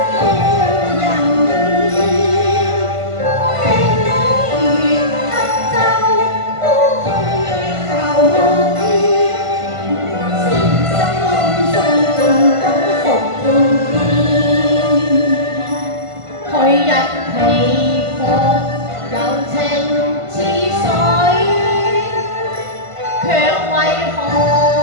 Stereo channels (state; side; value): late; left; 1.5 ms